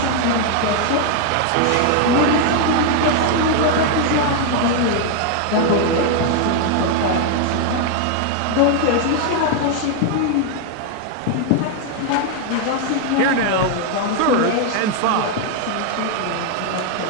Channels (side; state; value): both; different; correlation 0.00